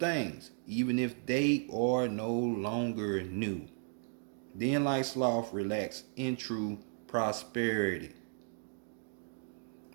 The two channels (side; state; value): left; silent; 54 dB below the other